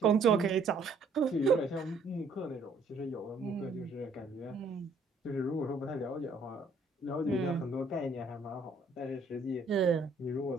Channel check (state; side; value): quieter; left; 3.4 dB